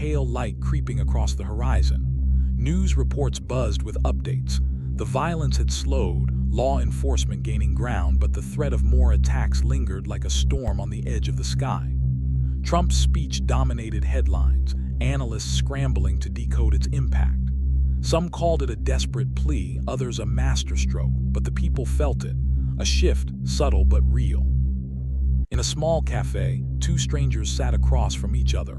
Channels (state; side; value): identical; both; correlation 1.00